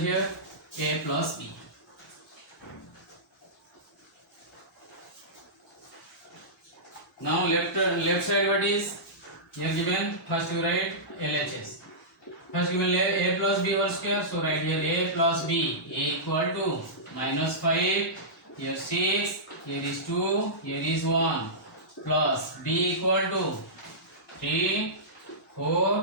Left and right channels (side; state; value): both; normal; correlation -0.16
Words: a plus b. Now left side what is? Here given, first you write LHS. First given a plus b whole square, so write here a plus b, a equal to minus 5, here 6, here is 2, here is 1, plus b equal to 3,